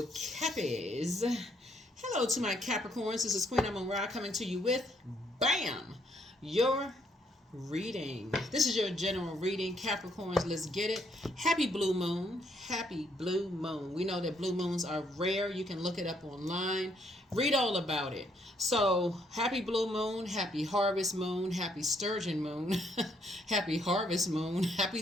Cappies. Hello to my Capricorns. This is Queen Amun Ra coming to you with BAM! Your reading. This is your general reading. Capricorns, let's get it. Happy blue moon. Happy blue moon. We know that blue moons are rare. You can look it up online. Read all about it. So, happy blue moon, happy harvest moon, happy sturgeon moon, happy harvest moon,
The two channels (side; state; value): both; normal; correlation 0.71